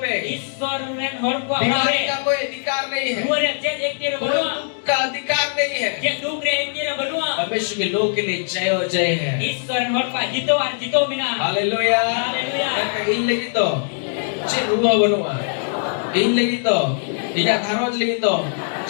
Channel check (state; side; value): silent; right; digital silence